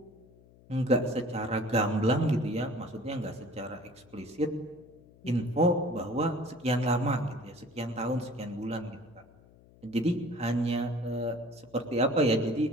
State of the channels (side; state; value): left; noise; hum, 26 dB below the sound